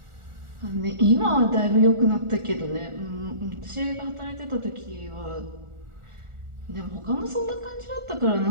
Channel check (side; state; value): left; late; 1.4 ms